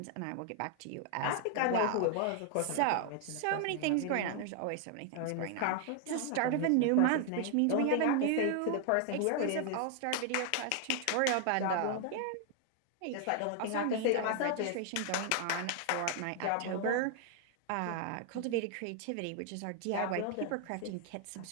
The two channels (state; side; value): different; both; correlation 0.00